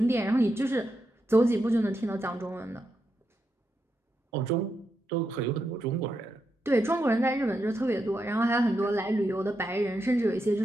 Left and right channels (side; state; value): both; normal; correlation 0.84